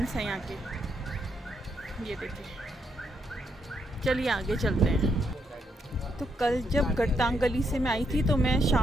हैं यहाँ के, ये देखिए। चलिए आगे चलते हैं। तो कल जब गट्टांग गली से मैं आई थी तो मैं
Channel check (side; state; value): both; normal; correlation 0.77